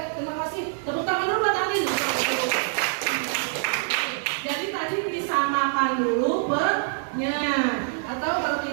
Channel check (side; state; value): left; silent; 61 dB below the other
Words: kasih. Tepuk tangan dulu buat Alin. Jadi tadi disamakan dulu per-nya. Atau kalau